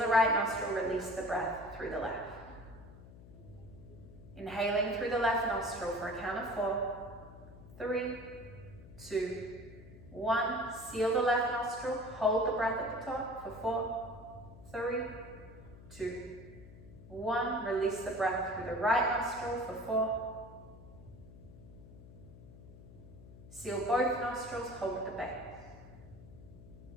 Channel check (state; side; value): noise; left; hum, 17 dB below the sound